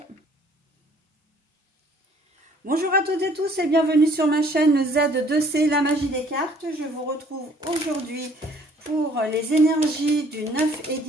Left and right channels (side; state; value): both; normal; correlation 0.58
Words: Bonjour à toutes et tous et bienvenue sur ma chaîne Z2C, la magie des cartes. Je vous retrouve aujourd'hui pour les énergies du 9 et